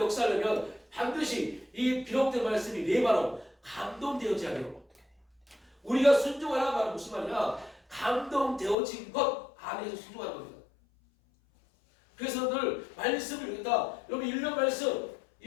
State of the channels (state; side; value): drops out; right; at 8.8 s